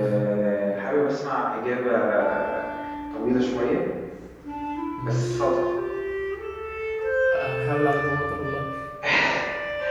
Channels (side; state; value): both; identical; correlation 1.00